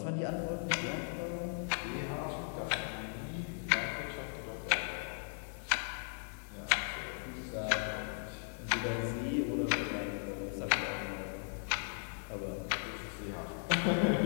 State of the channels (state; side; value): silent; right; 53 dB below the other